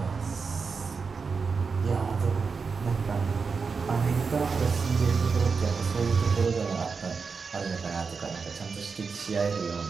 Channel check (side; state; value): left; quieter; 5.1 dB